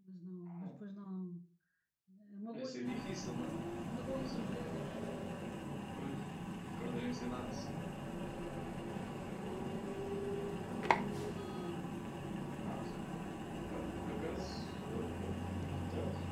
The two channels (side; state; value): both; identical; correlation 1.00